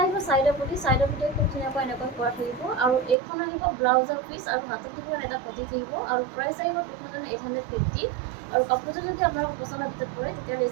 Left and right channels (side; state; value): left; drops out; at 3.2 s